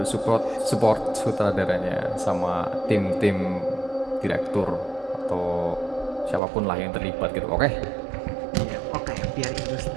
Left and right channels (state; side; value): drops out; left; at 6.4 s